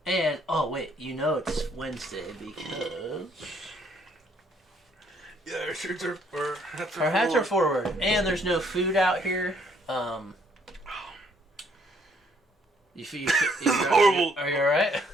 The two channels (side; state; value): both; normal; correlation 0.66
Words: And, oh wait, you know it's Wednesday because... Yeah, our shirts are... Our hats are forward. And there's no food out here. Horrible. Are you alright? I